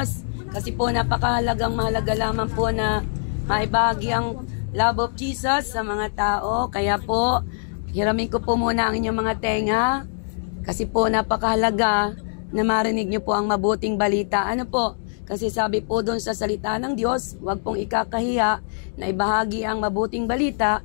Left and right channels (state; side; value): silent; right; digital silence